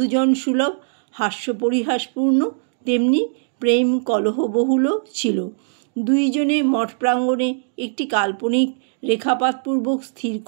সুলভ হাস্যপরিহাসপূর্ণ, তেমনি প্রেম কলহবহুল ছিল। দুইজনে মঠ প্রাঙ্গণে একটি কাল্পনিক রেখাপাতপূর্বক স্থির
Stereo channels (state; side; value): silent; left; digital silence